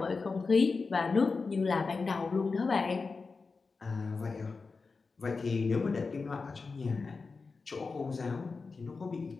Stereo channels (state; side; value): quieter; right; 4.4 dB